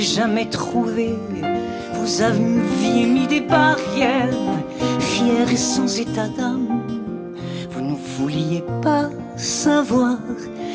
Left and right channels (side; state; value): both; identical; correlation 1.00